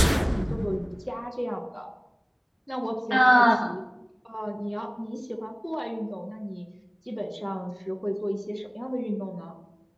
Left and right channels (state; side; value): identical; both; correlation 1.00